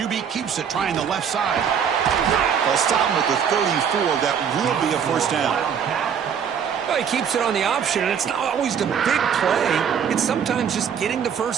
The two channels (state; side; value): quieter; left; 7.6 dB